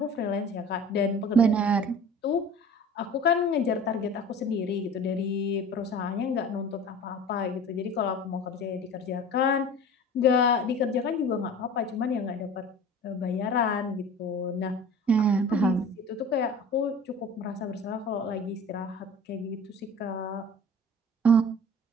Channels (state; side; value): normal; both; correlation 0.40